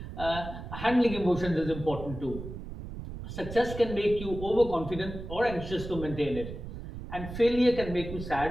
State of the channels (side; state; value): right; noise; rumble, 9 dB below the sound